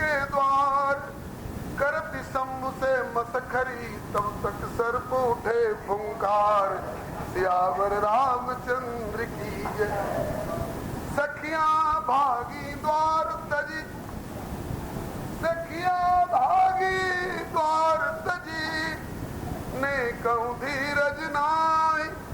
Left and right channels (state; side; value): identical; both; correlation 1.00